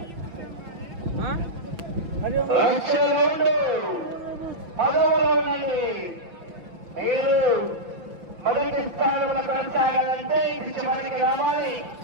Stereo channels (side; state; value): left; late; 6.0 ms